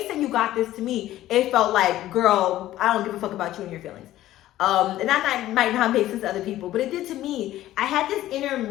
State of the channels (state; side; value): quieter; right; 14.3 dB